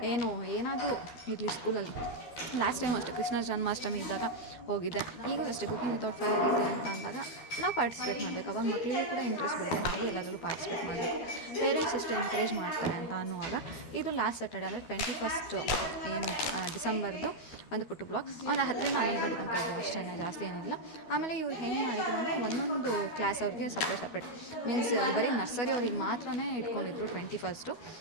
ಏನಾದರೂ ಇರಲಿ ಸ್ಕೂಲಲ್ಲಿ. ಲಾಸ್ಟ್ ಟೈಮ್ ಅಷ್ಟೇ ಕೃಷ್ಣ ಜನ್ಮಾಷ್ಟಮಿ ಇದ್ದಾಗ ಹೋಗಿದ್ದೆ. ಈಗೂ ಅಷ್ಟೇ ಕುಕಿಂಗ್ ವಿತೌಟ್ ಫೈರ್ ಇದೆ ಅಂತ ಅಂದಾಗ ನಾವು ಪಾರ್ಟಿಸಿಪೇಟ್ ಮಾಡಬೇಕು. ಅವಾಗ ಮಕ್ಕಳಿಗೂ ಕೂಡ ಇಂಟ್ರೆಸ್ಟ್ ಬರುತ್ತೆ, ನಾವು ಎಲ್ಲದರಲ್ಲೂ ಪಾರ್ಟಿಸಿಪೇಟ್ ಮಾಡಬೇಕು. ಪೇರೆಂಟ್ಸ್ ಎಷ್ಟು ಎನ್ಕರೇಜ್ ಮಾಡ್ತಾರೆ ಅಂತ ಅನ್ನುವಾಗ ಇದು ಲಾಸ್ಟ್ ಸ್ಯಾಟರ್ಡೆ ಅಂದರೆ 21 ಏನು ಡಿಸೆಂಬರ್ದು ಒಂದು ಪುಟ್ಟು ಬ್ಲಾಗ್. ಒಂದು 10ರಿಂದ 11 ಗಂಟೆ ತನಕ ಇದೆ ಅಷ್ಟೇ, ಜಾಸ್ತಿ ಏನಿಲ್ಲ. ಆಮೇಲೆ ಇವ್ರು ಹೆಂಗೆ ಮಾಡಿದ್ರು ಅಂದರೆ ಒಂದೊಂದು ಕ್ಲಾಸ್ ಅವ್ರಿಗೆ ಸಪ್ರೇಟ್ ಮೀನ್ಸ್ ಬರೀ ನರ್ಸರಿ ಅವ್ರಿಗೆ ಮಾತ್ರ ಇಟ್ಕೊಂಡಿದ್ರು 21.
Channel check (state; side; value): late; right; 12 ms